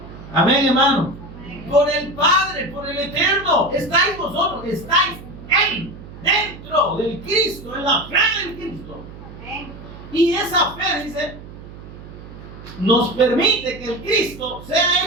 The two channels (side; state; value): right; noise; hum, 15 dB below the sound